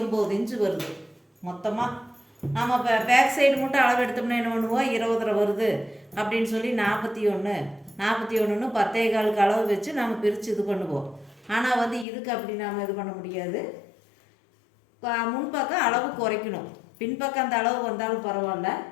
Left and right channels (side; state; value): right; drops out; at 12.1 s